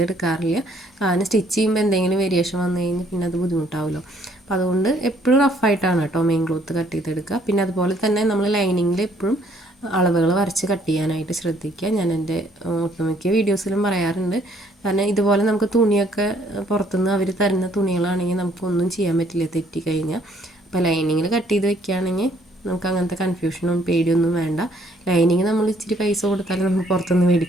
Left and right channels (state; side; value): normal; both; correlation 0.64